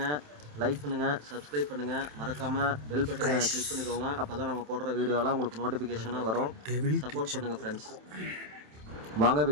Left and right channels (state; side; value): late; left; 27 ms